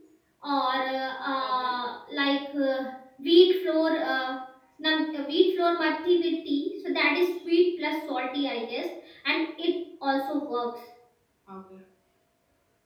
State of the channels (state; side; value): identical; both; correlation 1.00